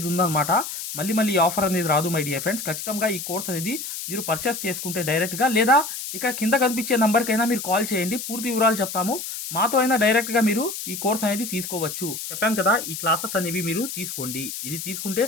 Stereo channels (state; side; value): noise; left; hiss, 7 dB below the sound